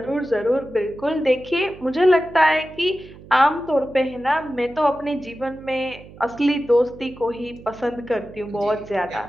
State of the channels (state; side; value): noise; right; hum, 19 dB below the sound